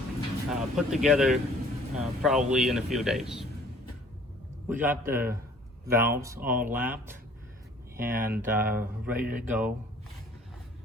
put together probably in a few days. We got the valves all lapped and ready to go.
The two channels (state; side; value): normal; both; correlation 0.54